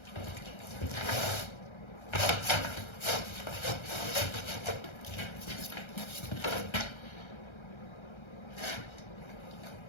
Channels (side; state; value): right; late; 1.3 ms